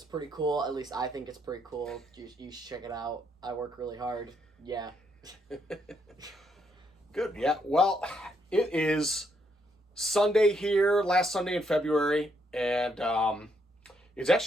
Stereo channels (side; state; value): both; normal; correlation 0.75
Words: pretty cool. At least I think it's pretty cool. You should check it out. I work really hard. Yeah. Good. Yeah. Well, it is Sunday here, last Sunday in February, and it's